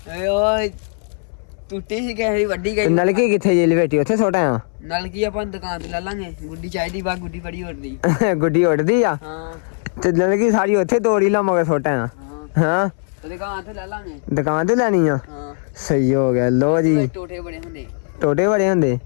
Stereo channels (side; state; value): right; silent; 63 dB below the other